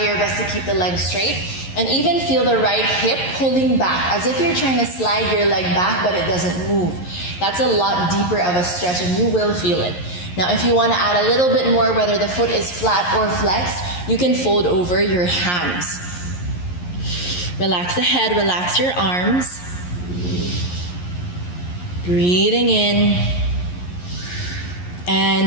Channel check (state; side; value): late; right; 11 ms